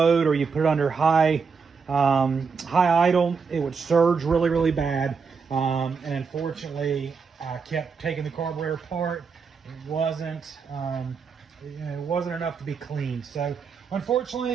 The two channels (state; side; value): quieter; left; 5.5 dB